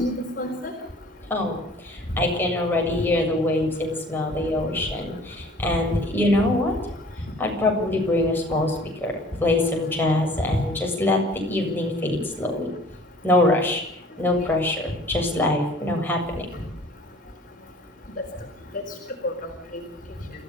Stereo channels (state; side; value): normal; both; correlation 0.50